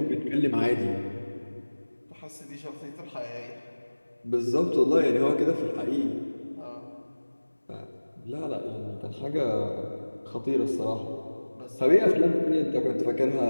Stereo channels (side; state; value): both; inverted; correlation -1.00